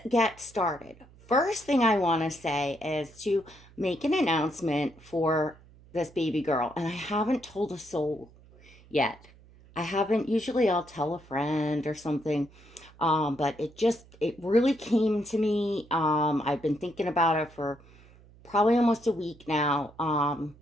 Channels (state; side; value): noise; right; hum, 25 dB below the sound